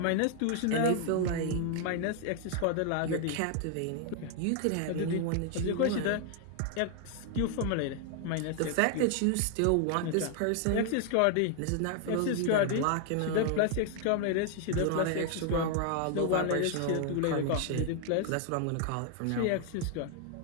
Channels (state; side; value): different; both; correlation 0.00